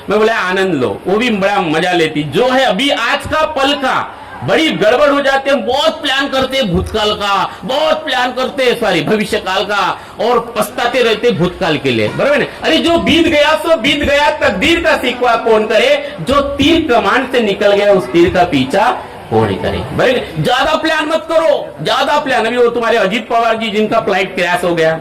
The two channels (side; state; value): both; identical; correlation 1.00